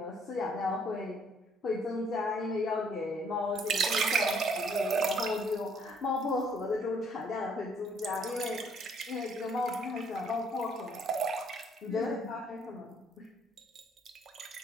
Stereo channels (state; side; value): normal; both; correlation 0.64